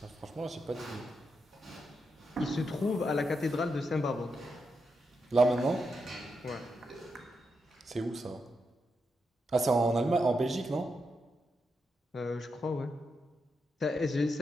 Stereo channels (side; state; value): both; normal; correlation 0.84